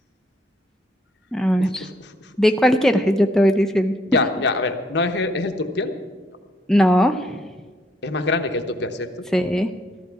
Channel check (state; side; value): normal; both; correlation 0.70